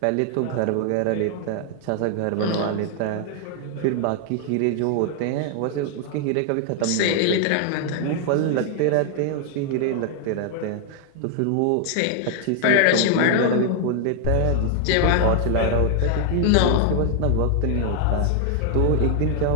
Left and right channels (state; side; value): different; both; correlation 0.00